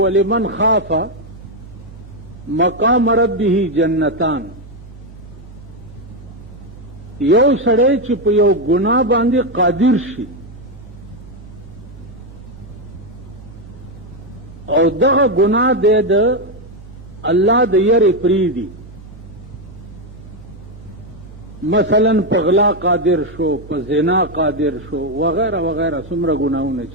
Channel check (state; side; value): normal; both; correlation 0.05